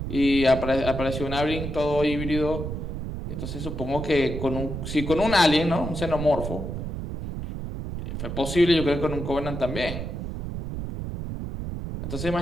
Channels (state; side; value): noise; right; rumble, 5 dB below the sound